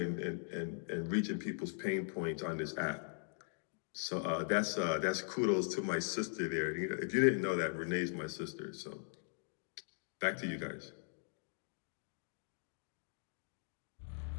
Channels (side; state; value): right; silent; digital silence